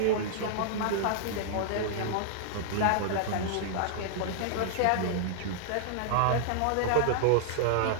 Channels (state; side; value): different; both; correlation -0.01